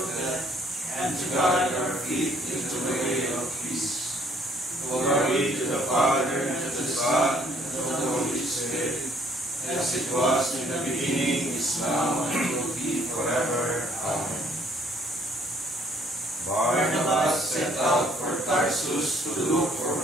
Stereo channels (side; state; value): both; normal; correlation 0.62